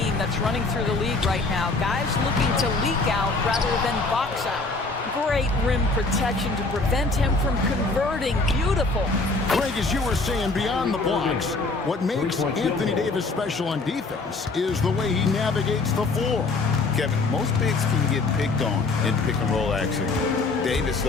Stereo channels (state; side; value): quieter; right; 3.6 dB